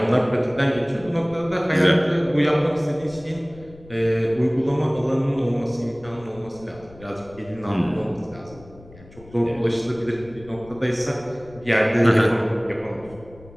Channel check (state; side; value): noise; left; rumble, 21 dB below the sound